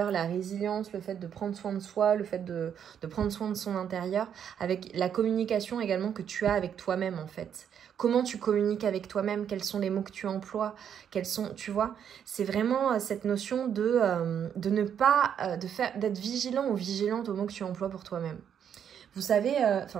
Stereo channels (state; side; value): quieter; left; 8.5 dB